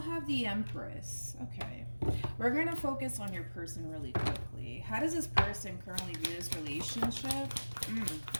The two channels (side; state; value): both; inverted; correlation -1.00